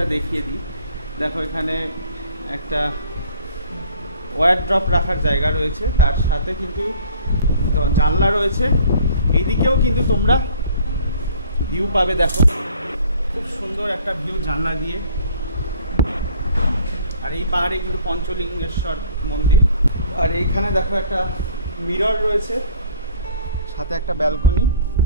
দেখিয়ে দিই। দেখো এখানে একটা ওয়ারড্রপ রাখার জায়গা রয়েছে, তার সাথে কিন্তু জানলা রয়েছে। এইদিকেও কিন্তু তোমরা ভিউ পাবে, দেখো খুব সুন্দর একটা ভিউ জানলা দিয়ে। আর এই পাহাড়ে কিন্তু পঞ্চলিঙ্গেশ্বর মন্দির। আর এইখানে দেখো একটা মিরর রয়েছে, সাথে একটা ব্যালকনি।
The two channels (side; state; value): both; inverted; correlation -0.54